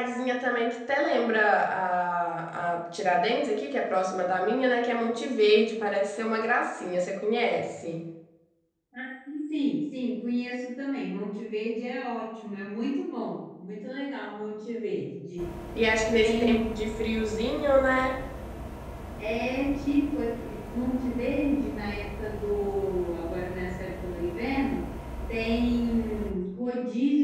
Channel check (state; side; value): identical; both; correlation 1.00